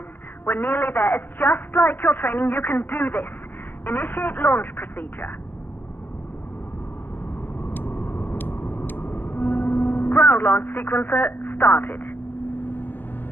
We're nearly there. It's just like your training. You can do this. Initiate launch procedure. Ground launch sequencer started.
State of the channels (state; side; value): late; right; 0.091 ms